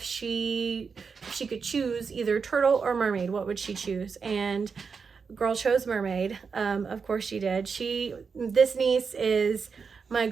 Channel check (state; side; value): quieter; left; 5.5 dB